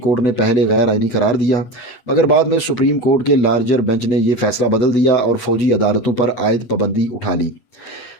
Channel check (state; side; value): late; right; 8.5 ms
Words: نے پہلے غیر آئینی قرار دیا، مگر بعد میں سپریم کورٹ کے لارجر بینچ نے یہ فیصلہ بدل دیا اور فوجی عدالتوں پر عائد پابندی اٹھا لی۔